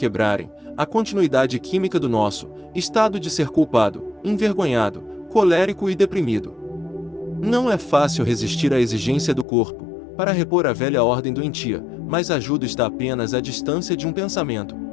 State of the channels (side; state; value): right; drops out; at 9.5 s